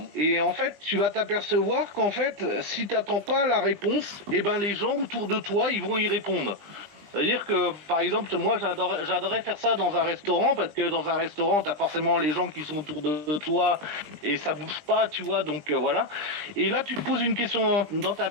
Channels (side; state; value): left; late; 20 ms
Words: Et en fait, tu vas t'apercevoir qu'en fait, si t'attends pas la réponse, eh ben les gens autour de toi, ils vont y répondre. C'est-à-dire que, par exemple, moi, j'adorais faire ça dans un restaurant, parce que dans un restaurant, t'as forcément les gens qui sont autour de toi, et ça bouge pas, tu vois, donc voilà. Et là, tu te poses une question dans ta